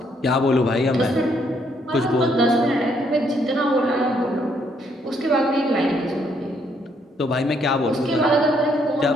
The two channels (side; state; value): both; normal; correlation 0.71